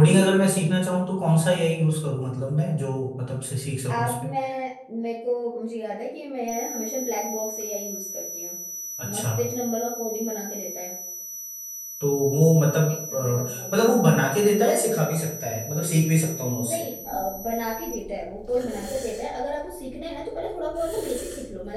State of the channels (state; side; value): identical; both; correlation 1.00